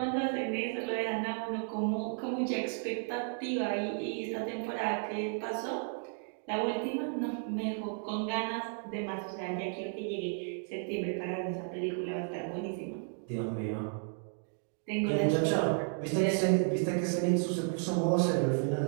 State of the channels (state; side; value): silent; left; 56 dB below the other